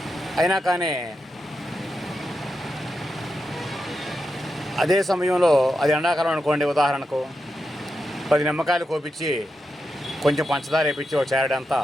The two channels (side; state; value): both; normal; correlation 0.87